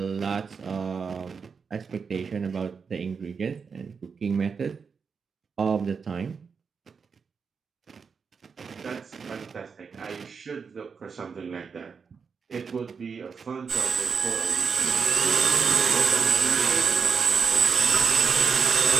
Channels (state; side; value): quieter; left; 5.7 dB